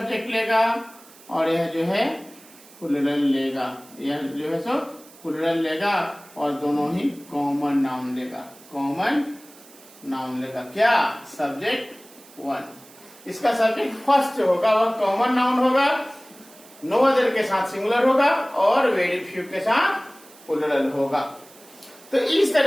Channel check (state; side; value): noise; right; hiss, 23 dB below the sound